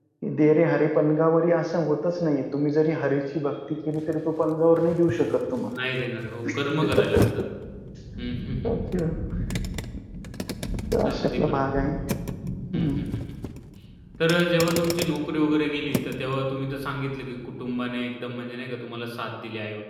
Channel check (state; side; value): identical; both; correlation 1.00